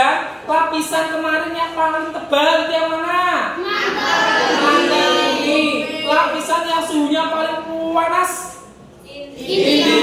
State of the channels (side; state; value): both; identical; correlation 1.00